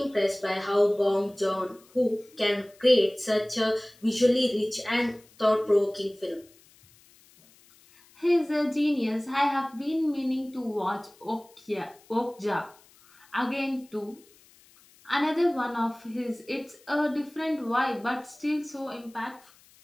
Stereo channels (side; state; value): left; noise; hiss, 28 dB below the sound